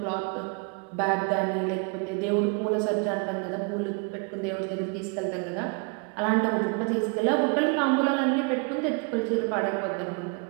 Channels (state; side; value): quieter; left; 33.9 dB